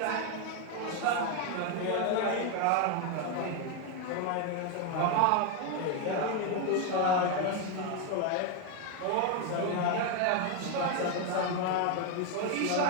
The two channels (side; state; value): both; different; correlation 0.02